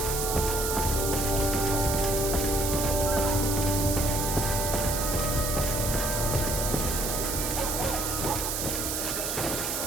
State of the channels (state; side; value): noise; right; hiss, 1 dB below the sound